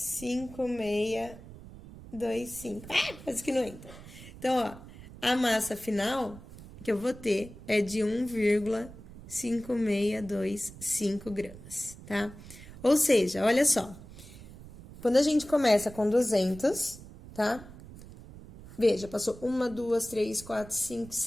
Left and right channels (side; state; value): right; noise; rumble, 17 dB below the sound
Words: Quase que não entra. Então, ó, a massa final que eu vou ter é de 1,5625 gramas, tá? Ou seja, olha só. Quando a gente começa com 200, tá? Veja, passou 1, 2, 3, 4, 5,